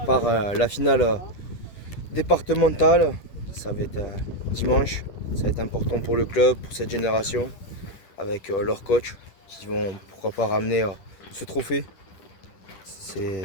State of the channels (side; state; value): right; late; 10 ms